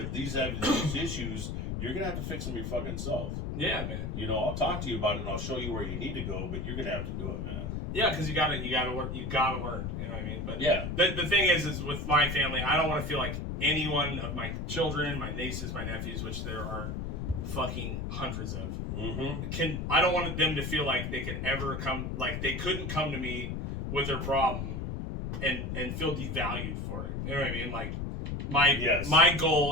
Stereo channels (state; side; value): noise; left; rumble, 4 dB below the sound